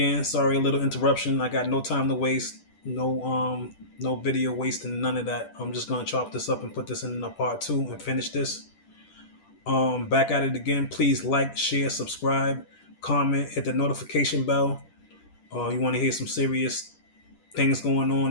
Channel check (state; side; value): late; right; 10 ms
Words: Sorry, a little interruption. I got no time to waste. No video wasting, none of that. I'm just gonna chop this up and put this in a part two and finish this. Back at it again. Please like, share, subscribe, comment, hit the notification bell. You want to hear some serious things going